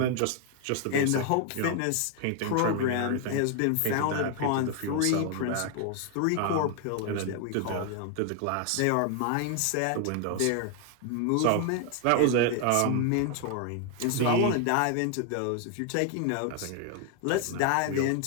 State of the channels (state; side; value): different; both; correlation 0.00